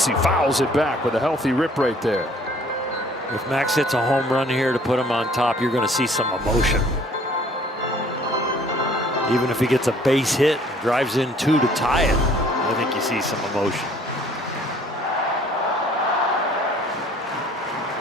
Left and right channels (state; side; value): normal; both; correlation 0.56